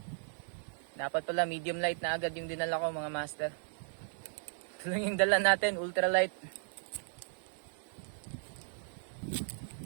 Dapat pala medium light na agad yung dinala ko mga master. Ito lang yung dala natin, ultralight.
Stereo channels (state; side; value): silent; left; digital silence